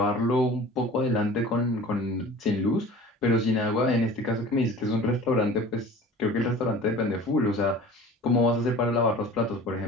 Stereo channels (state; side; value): normal; both; correlation 0.42